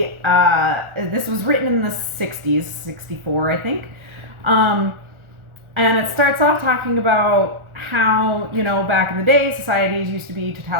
this was written in the 60s, 64 I think, and it starts off talking about how, back in the day societies used to be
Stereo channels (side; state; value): left; late; 1.4 ms